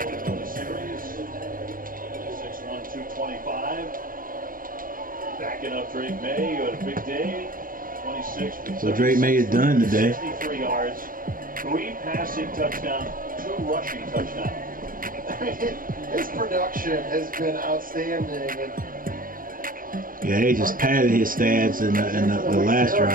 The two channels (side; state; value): left; late; 0.40 ms